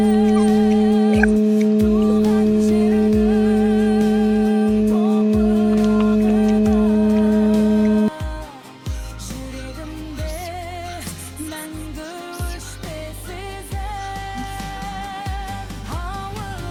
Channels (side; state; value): both; identical; correlation 1.00